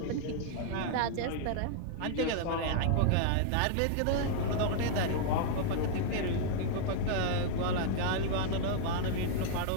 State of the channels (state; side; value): different; both; correlation -0.01